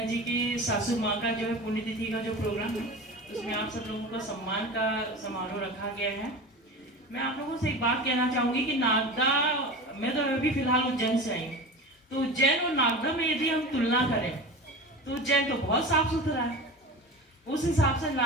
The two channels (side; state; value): both; normal; correlation 0.31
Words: जी की सासू माँ का जो है पुण्यतिथि का जो प्रोग्राम है उसमें आप सब लोगों को सम्मान का समारोह रखा गया है। मैं आप लोगों से एक बात कहना चाहूंगी कि नागदा, मैं तो अभी फिलहाल उज्जैन से आई हूँ, तो उज्जैन और नागदा में यदि हम तुलना करें तो उज्जैन तो बहुत साफ सुथरा है, उस हिसाब से